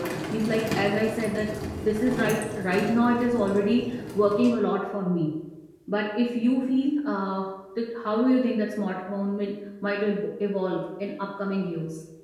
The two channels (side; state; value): both; identical; correlation 1.00